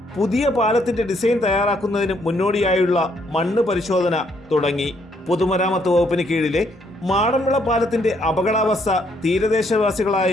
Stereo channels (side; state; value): both; normal; correlation 0.71